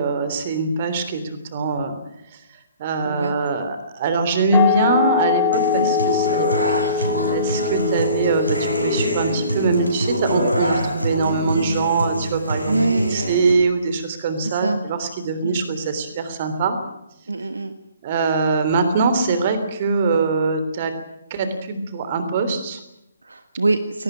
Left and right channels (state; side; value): inverted; both; correlation -0.57